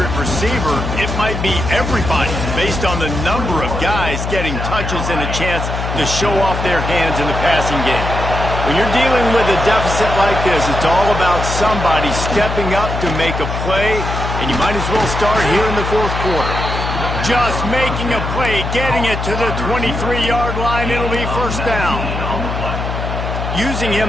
receiver, it might be everybody based on the number of guys getting touches and a chance to show off their hands in the passing game. When you're dealing with a deficit like this, it's all about somebody stepping up to make a play, and you might as well start here in the fourth quarter. Just making a play, getting it to the 23-yard line, it'll be first down. Using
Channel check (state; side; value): noise; left; hum, 4 dB below the sound